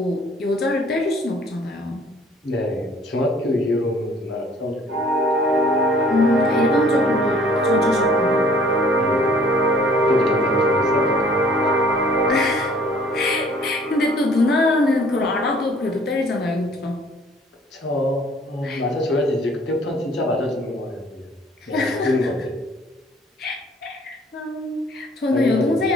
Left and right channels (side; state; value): both; normal; correlation 0.56